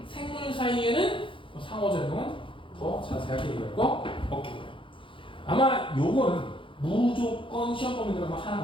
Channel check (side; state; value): right; late; 0.25 ms